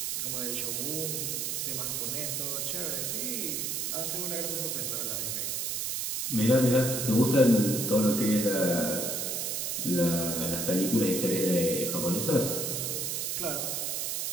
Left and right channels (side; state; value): right; noise; hiss, 1 dB below the sound